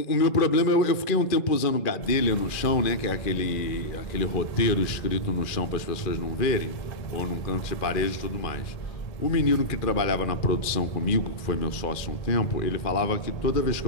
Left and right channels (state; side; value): late; right; 2.4 ms